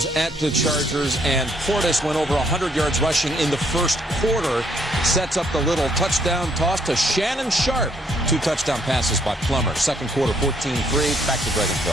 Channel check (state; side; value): normal; both; correlation 0.69